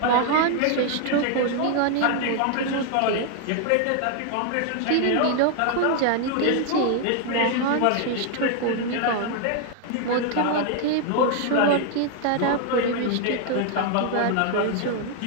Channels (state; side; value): different; both; correlation 0.00